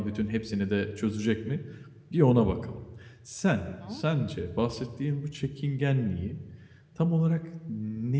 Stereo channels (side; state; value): both; identical; correlation 1.00